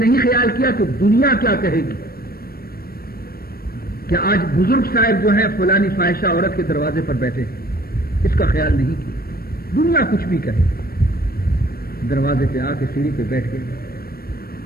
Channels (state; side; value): late; right; 0.44 ms